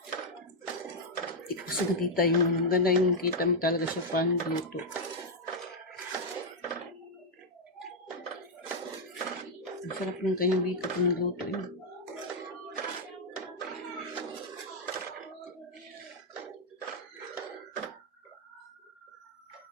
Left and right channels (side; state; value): both; normal; correlation -0.01